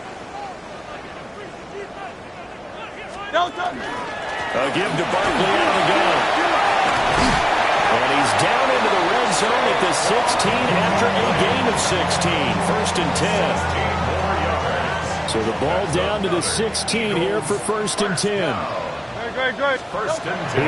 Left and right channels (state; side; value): identical; both; correlation 1.00